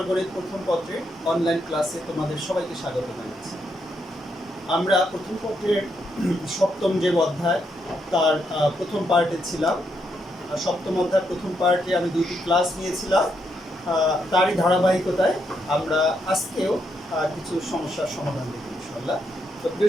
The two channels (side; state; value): both; normal; correlation 0.79